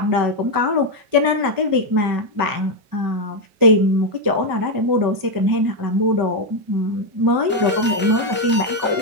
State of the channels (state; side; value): late; left; 5.2 ms